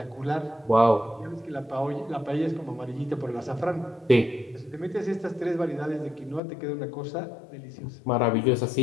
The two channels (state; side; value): drops out; right; at 6.4 s